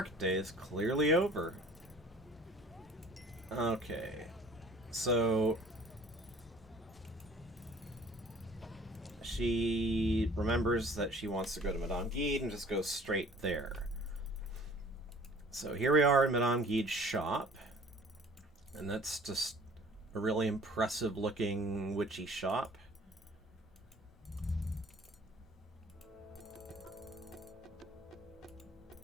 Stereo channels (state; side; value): normal; both; correlation 0.51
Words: day is clearly over. Okay. So she remembers that she wants to go to Madame Guide and just goes straight there. So here we are in Madame Guide's shop. And that's just a really impressive looking witchy shop.